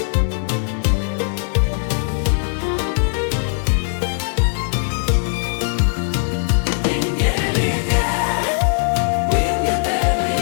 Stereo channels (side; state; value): right; silent; digital silence